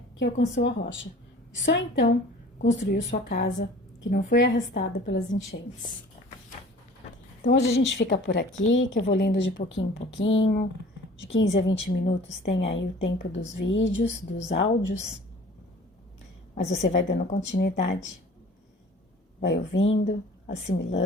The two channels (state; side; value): normal; both; correlation 0.47